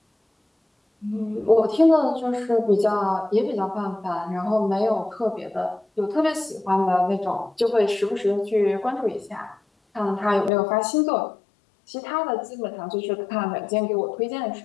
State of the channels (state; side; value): drops out; right; at 10.5 s